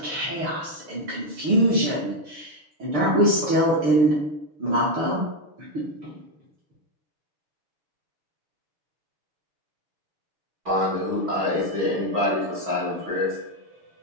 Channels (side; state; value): left; late; 6.7 ms